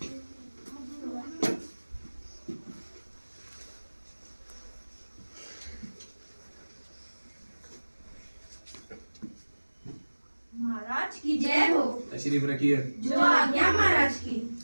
महाराज की जय हो। तशरीफ रखिए। जो आज्ञा महाराज की।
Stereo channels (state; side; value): inverted; both; correlation -1.00